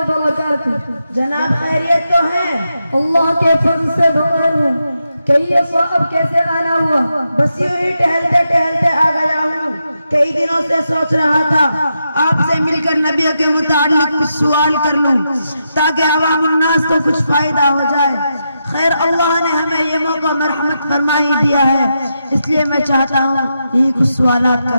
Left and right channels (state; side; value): inverted; both; correlation -0.85